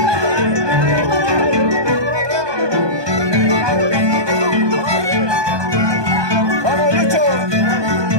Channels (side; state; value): left; late; 1.2 ms